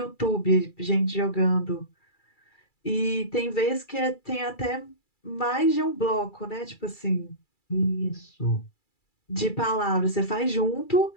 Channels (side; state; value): right; late; 2.3 ms